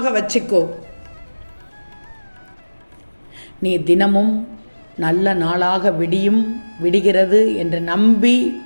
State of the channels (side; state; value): both; inverted; correlation -1.00